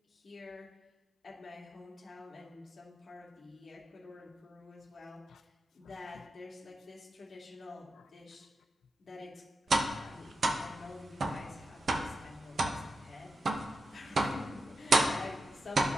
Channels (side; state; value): both; normal; correlation 0.90